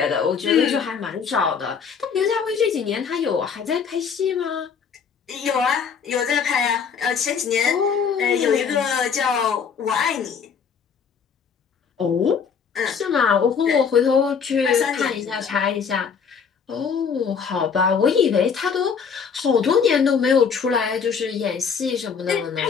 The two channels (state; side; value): quieter; right; 6.4 dB